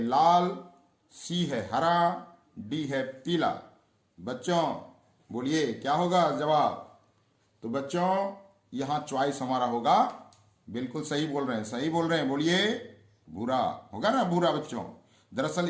सी है हरा, डी है पीला। बच्चों बोलिए क्या होगा जवाब? तो बच्चों यहां चॉइस हमारा होगा, बिल्कुल सही बोल रहे हैं, सही बोल रहे हैं, बोलिए भूरा होगा ना, भूरा बच्चों। दरअसल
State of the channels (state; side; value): identical; both; correlation 1.00